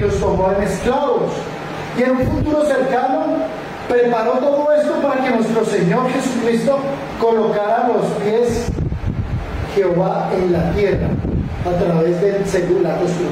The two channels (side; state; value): both; identical; correlation 1.00